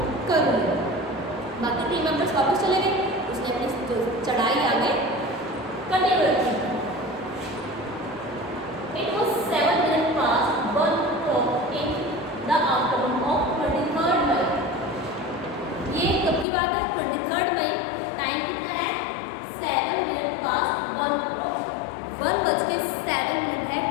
करूँगी। बाकी टीम मेंबर्स वापस चले गए, उसने अपनी जो चढ़ाई आगे कंटिन्यू रखी। It was 7 minutes past 1 o'clock in the afternoon of 23rd May। ये कब की बात है? 23rd मई। टाइम कितना है? 7 minutes past 1 o'clock। 1:07 है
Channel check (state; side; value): drops out; right; at 16.4 s